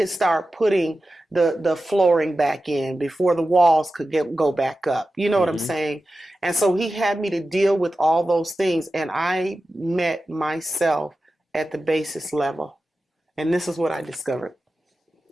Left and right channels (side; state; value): both; normal; correlation 0.93